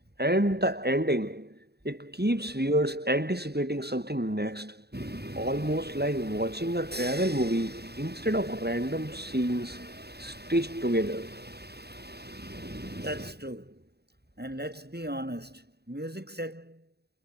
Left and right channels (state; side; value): late; left; 0.47 ms